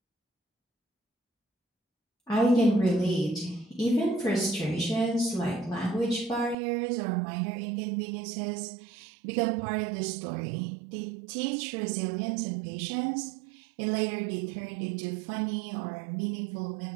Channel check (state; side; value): drops out; left; at 6.6 s